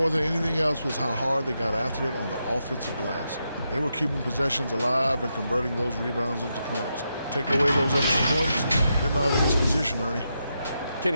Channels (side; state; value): both; inverted; correlation -0.84